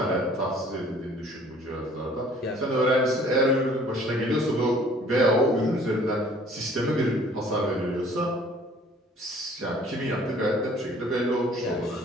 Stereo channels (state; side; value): normal; both; correlation 0.55